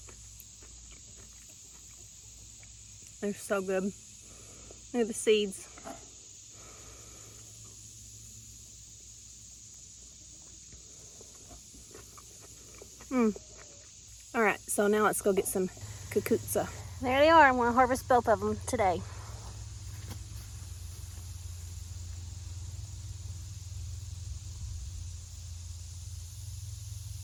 They're so good. Look at the seeds. All right, so now let's go get some cucuzzi. There they are. I'm going to harvest both of them today.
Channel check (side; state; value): both; identical; correlation 1.00